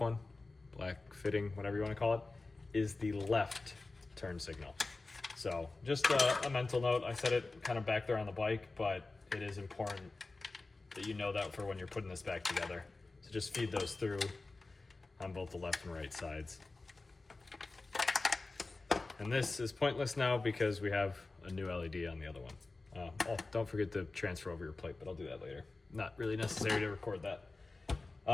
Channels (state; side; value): quieter; right; 3.4 dB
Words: black fitting, whatever you want to call it, is the left turn signal. So just a mental note. I said it kind of back there on the bike, but it is important that you know that for when you're putting this back together. So just feed those through on both the left and right sides. And this is pointless now because we have a new LED on the other one. Oh, don't forget to transfer over your plate, but I'll do that later. Not really necessary to record that.